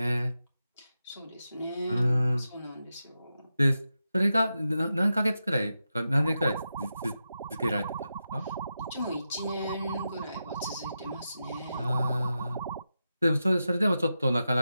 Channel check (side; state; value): both; inverted; correlation -0.89